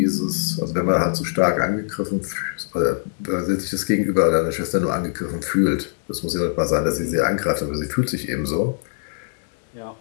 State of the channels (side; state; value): right; silent; 63 dB below the other